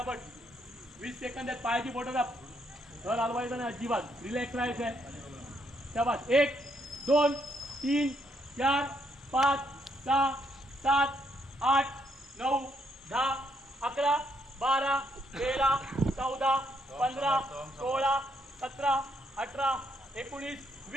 20 सेकंद आहेत. पायाची बोटं दाब. तर हलवायचं नाही अजिबात. रिलॅक्स राहायचं आहे. शाबास. 1 2 3 4 5 6 7 8 9 10 11 12 13 14 15 16 17 18 19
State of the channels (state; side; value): normal; both; correlation 0.74